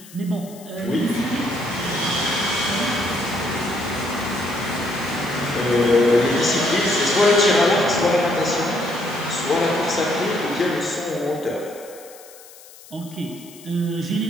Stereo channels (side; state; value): left; noise; hiss, 20 dB below the sound